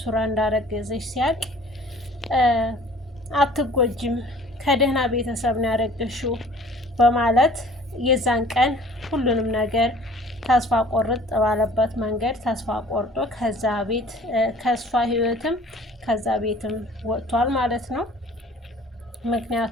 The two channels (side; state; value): both; normal; correlation 0.50